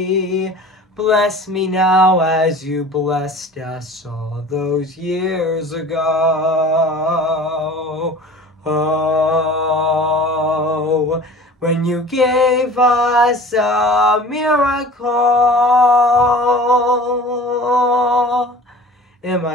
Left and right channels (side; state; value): both; normal; correlation 0.42